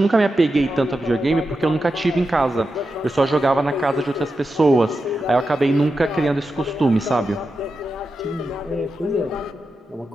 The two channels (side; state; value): both; normal; correlation 0.89